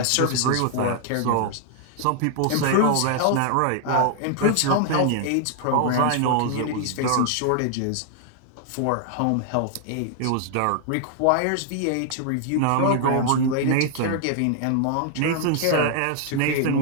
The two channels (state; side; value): different; both; correlation 0.00